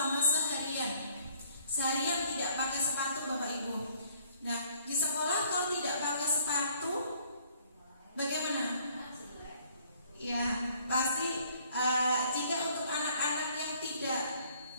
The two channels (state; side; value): inverted; both; correlation -0.61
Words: seharian tidak pakai sepatu Bapak Ibu. Nah, di sekolah kalau tidak pakai sepatu bagaimana? Ya, pasti jika untuk anak-anak yang tidak